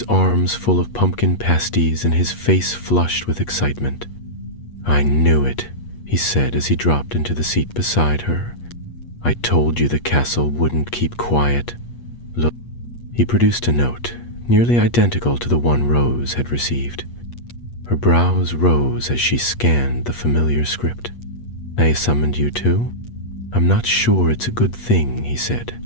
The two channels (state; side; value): late; right; 8.4 ms